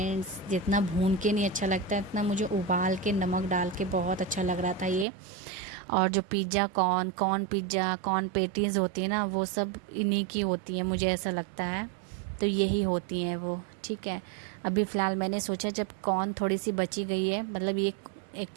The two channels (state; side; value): drops out; left; at 5.1 s